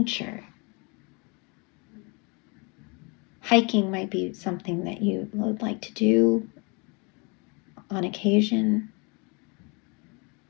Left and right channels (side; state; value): right; quieter; 30.9 dB